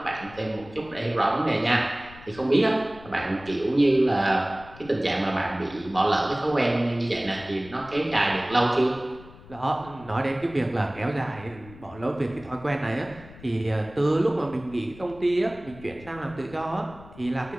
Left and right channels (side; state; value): left; noise; rumble, 19 dB below the sound